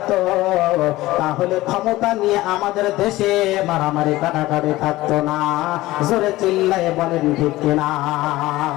তাহলে ক্ষমতা নিয়ে আমাদের দেশে মারামারি কাটাকাটি থাকতো না। জোরে চিল্লায় বলেন ঠিক কিনা?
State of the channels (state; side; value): quieter; right; 17.8 dB